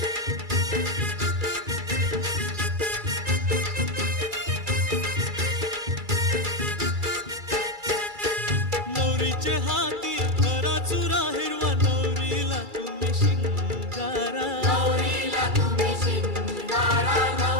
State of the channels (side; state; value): left; late; 2.3 ms